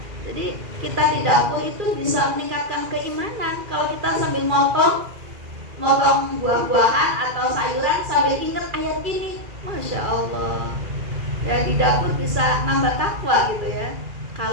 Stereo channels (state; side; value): late; left; 2.4 ms